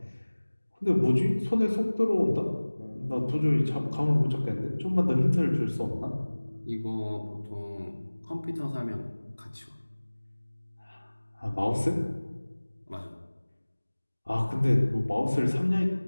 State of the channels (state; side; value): inverted; both; correlation -1.00